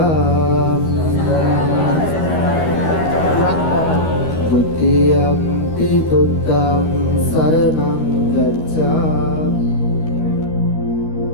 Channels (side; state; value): right; late; 13 ms